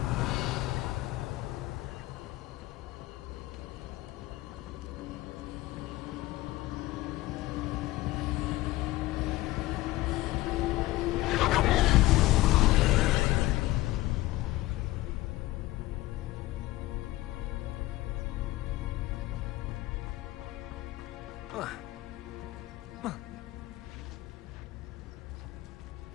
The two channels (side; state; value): right; quieter; 17.9 dB